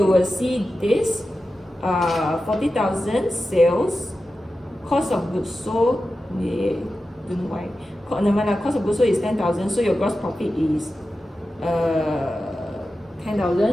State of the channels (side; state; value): both; normal; correlation 0.92